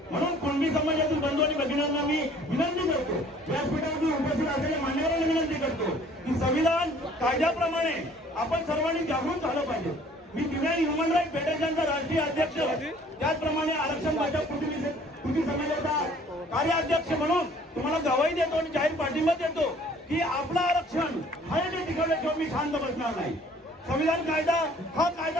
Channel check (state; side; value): normal; both; correlation 0.55